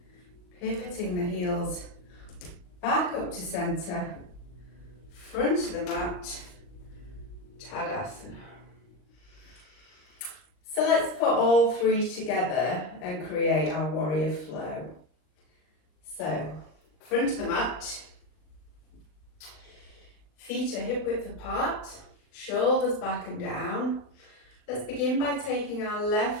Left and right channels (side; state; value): right; late; 39 ms